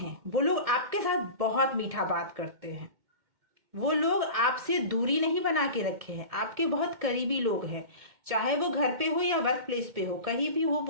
वो लोग आपके साथ बहुत मीठा बात करते हैं, वो लोग आपसे दूरी नहीं बना के रखे हैं, आपके बहुत करीबी लोग हैं, चाहे वो घर पे हो या वर्क प्लेस पे हो, कहीं भी हो,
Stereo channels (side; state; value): left; late; 2.1 ms